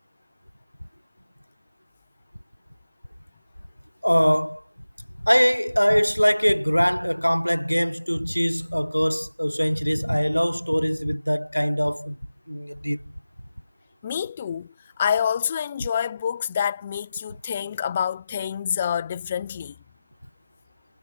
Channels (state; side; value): inverted; both; correlation -0.95